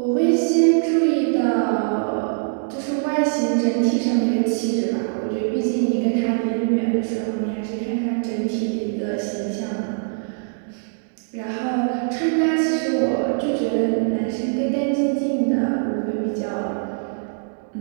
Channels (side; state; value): left; silent; digital silence